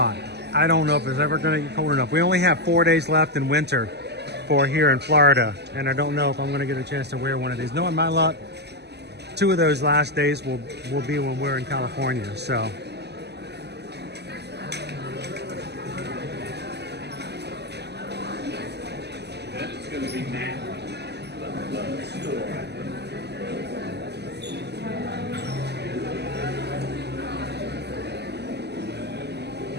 I don't know if it's ever going to get cold enough. We only have 4 days left in winter for here in Florida, and I don't know if I'm going to get a chance to wear one of these. Knowing my luck, 2 of those last days will be when we're in California. So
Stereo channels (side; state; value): left; late; 0.49 ms